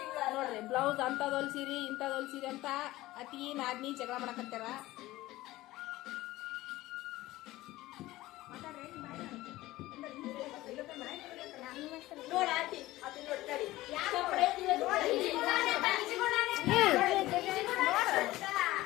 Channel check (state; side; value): quieter; right; 17.4 dB